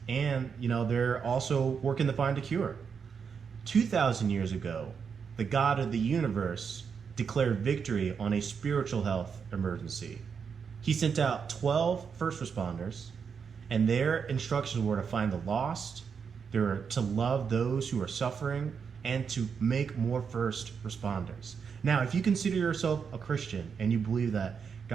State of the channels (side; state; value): left; quieter; 6.3 dB